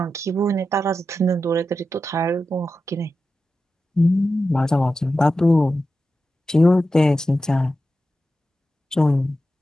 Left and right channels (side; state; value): both; normal; correlation 0.91